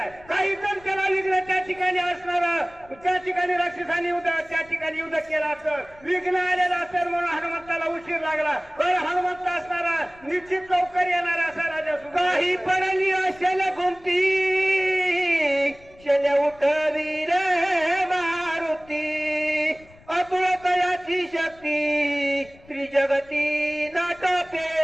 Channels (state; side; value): noise; left; rumble, 25 dB below the sound